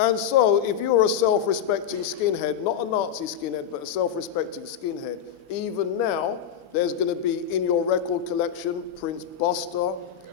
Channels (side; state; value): right; quieter; 8.8 dB